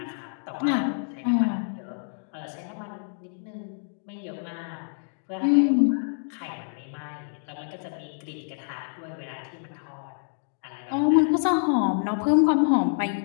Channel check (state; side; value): silent; right; digital silence